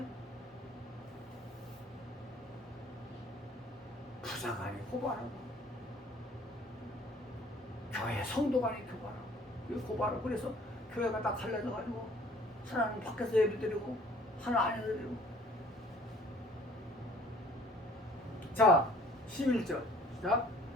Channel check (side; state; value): both; normal; correlation 0.53